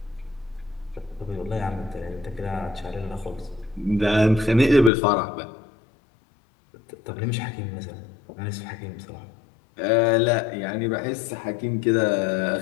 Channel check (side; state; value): right; drops out; at 4.9 s